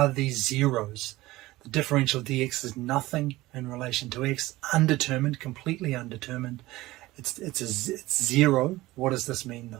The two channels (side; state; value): left; quieter; 18.4 dB